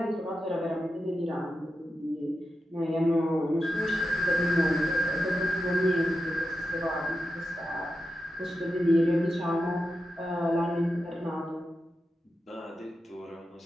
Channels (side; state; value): both; normal; correlation 0.90